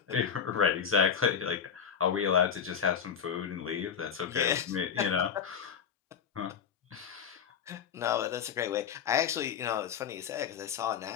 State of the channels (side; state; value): right; quieter; 7.4 dB